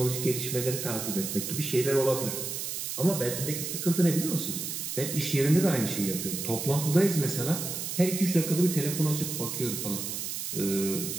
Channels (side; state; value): right; noise; hiss, 4 dB below the sound